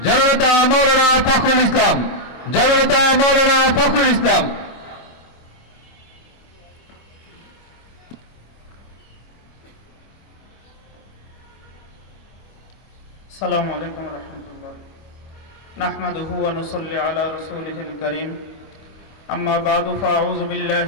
জননেতা মাওলানা ফখরুল ইসলাম। জননেতা মাওলানা ফখরুল ইসলাম। আসসালামু আলাইকুম ওয়া রাহমাতুল্লাহ। নাহমাদুহু ওয়া নুসাল্লি আলা রাসূলিহিল কারীম। আম্মা বা'দু ফাআউযু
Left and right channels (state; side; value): late; right; 25 ms